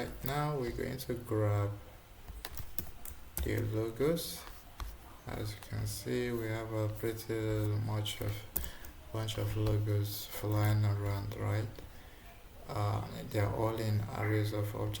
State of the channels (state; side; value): identical; both; correlation 1.00